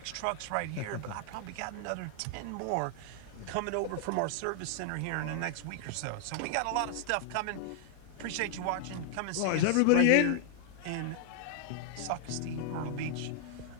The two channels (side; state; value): both; different; correlation 0.00